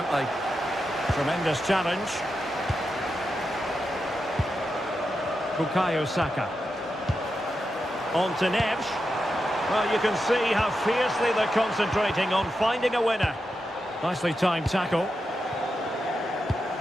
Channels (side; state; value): both; normal; correlation 0.88